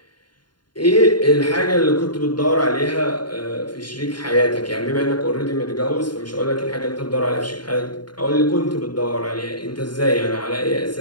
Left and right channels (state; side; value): late; right; 0.71 ms